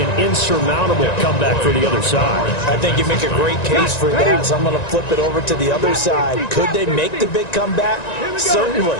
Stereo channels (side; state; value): right; late; 1.9 ms